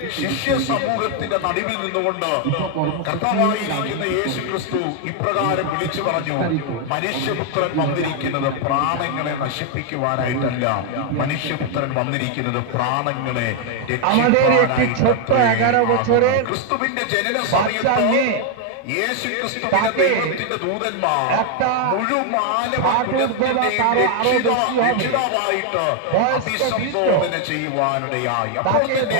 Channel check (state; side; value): different; both; correlation 0.00